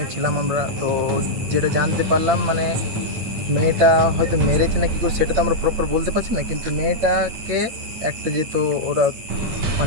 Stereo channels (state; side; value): late; left; 9.0 ms